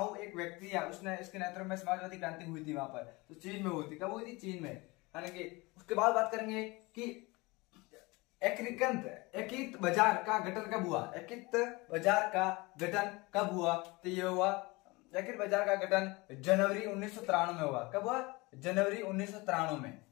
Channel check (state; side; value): quieter; right; 24.2 dB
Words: एक व्यक्ति है, उसने इसके नेतृत्व में समाजवादी क्रांति हुई थी वहां पर। तो चीन में हुई थी। कब हुई थी? चीन में। यानी कि उसके बाद बात करेंगे कि एकीकृत बाजार का गठन कब हुआ। एकीकृत बाजार का गठन कब हुआ? तो ये हुआ एकीकृत बाजार का गठन जनवरी 1993 में हुआ। कब हुआ? जनवरी 1993 में।